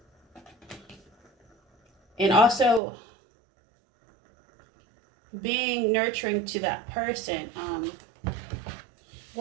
And also being nurturing to that person.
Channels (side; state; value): left; drops out; at 2.8 s